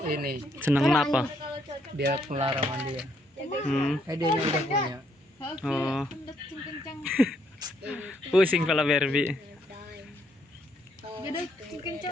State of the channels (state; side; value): normal; both; correlation 0.72